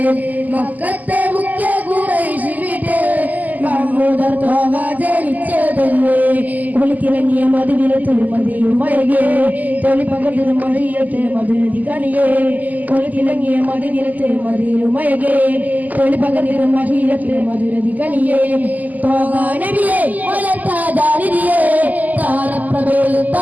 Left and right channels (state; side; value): late; left; 0.080 ms